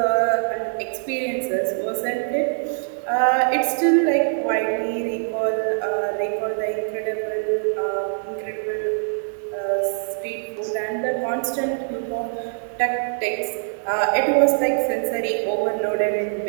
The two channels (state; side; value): silent; left; 63 dB below the other